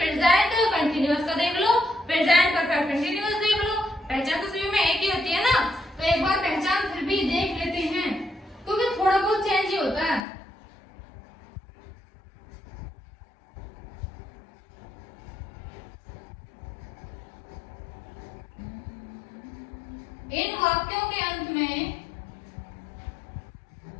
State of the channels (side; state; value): right; drops out; at 10.2 s